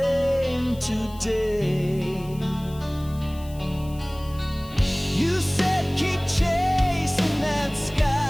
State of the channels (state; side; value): noise; left; hiss, 22 dB below the sound